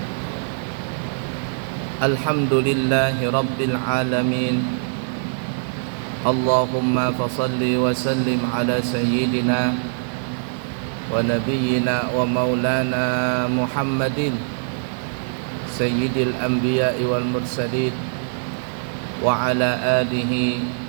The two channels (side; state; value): left; silent; digital silence